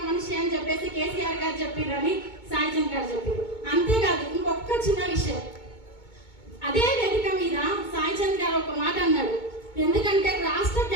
మనిషి అని చెప్పేసి కేసీఆర్ గారు చెప్పారని సాయి చంద్ గారు చెప్పారు. అంతేకాదు ఇంకొక చిన్న విషయం, అదే వేదిక మీద సాయి చంద్ గారు ఒక మాట అన్నాడు. ఎందుకంటే రాష్ట్ర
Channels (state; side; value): late; right; 2.2 ms